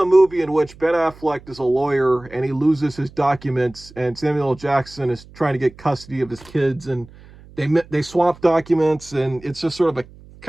movie in which Ben Affleck is a lawyer and he loses his documents, and Samuel L. Jackson is trying to get custody of his kids, and they swap documents, and it's just sort of a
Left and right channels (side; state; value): right; noise; hum, 22 dB below the sound